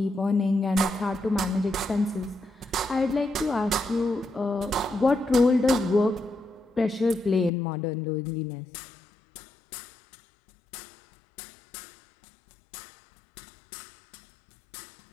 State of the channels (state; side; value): drops out; right; at 7.5 s